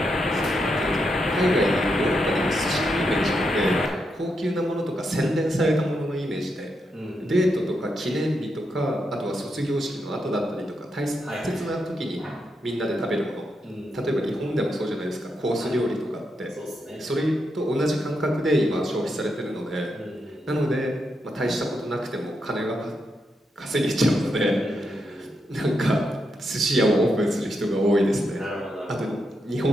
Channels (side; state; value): both; normal; correlation 0.83